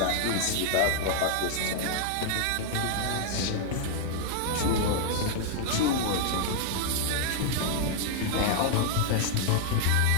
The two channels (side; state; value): both; different; correlation -0.01